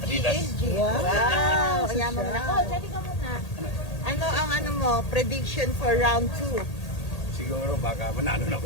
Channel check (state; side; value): late; right; 1.8 ms